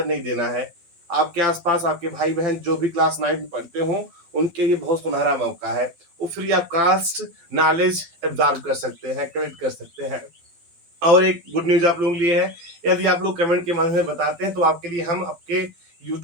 नहीं देना है। आपके आसपास आपके भाई बहन जो भी क्लास 9 में पढ़ते हो उनके लिए बहुत सुनहरा मौका है, वो free of cost knowledge absorb कर सकते हैं, कलेक्ट कर सकते हैं। और एक गुड न्यूज आप लोगों के लिए है, यदि आप लोग कमेंट के माध्यम से बताते हैं तो आपके लिए हम आपके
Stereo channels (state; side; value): late; left; 12 ms